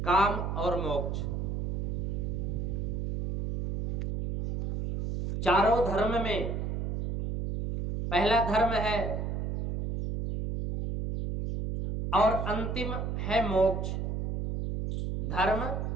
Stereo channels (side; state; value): right; noise; hum, 2 dB below the sound